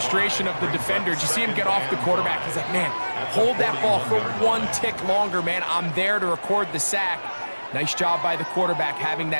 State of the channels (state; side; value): inverted; both; correlation -1.00